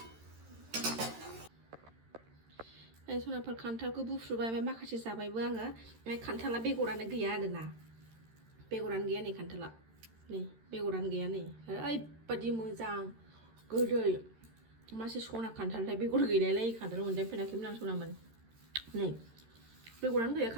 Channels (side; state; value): left; late; 13 ms